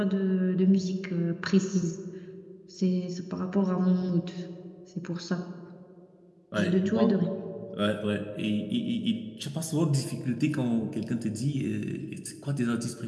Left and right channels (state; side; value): identical; both; correlation 1.00